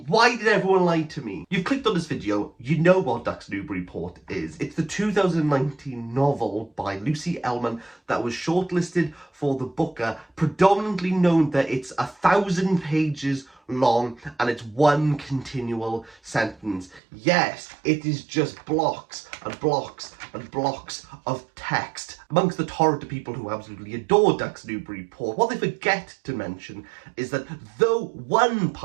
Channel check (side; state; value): left; drops out; at 17.0 s